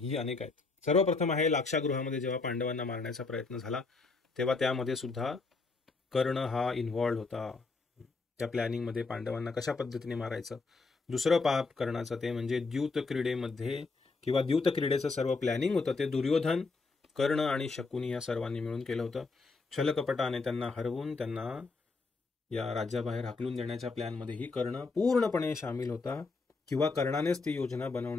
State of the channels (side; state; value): right; quieter; 4.0 dB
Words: अनेक आहेत. सर्वप्रथम आहे लाक्षागृहामध्ये जेव्हा पांडवांना मारण्याचा प्रयत्न झाला, तेव्हा त्यामध्ये सुद्धा कर्ण हा इन्व्हॉल्ड होता, त्या प्लॅनिंगमध्ये पांडवांना कशा पद्धतीने मारायचं. दुसरं पाप कर्णाचं ते म्हणजे द्यूत क्रीडेमध्ये किंवा द्यूत क्रीडेचं सर्व प्लॅनिंग होतं ते दुर्योधन, कर्ण आणि शकुनी या सर्वांनी मिळून केलं होतं. छलकपटाने त्यांना हरवून त्यांना या राज्याबाहेर हाकलून देण्याच्या प्लॅनमध्येही कर्ण पूर्णपणे सामील होता, किंवा कर्णानेच ती योजना